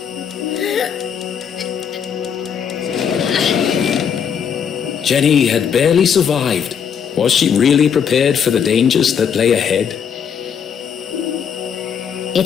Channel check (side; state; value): right; quieter; 7.6 dB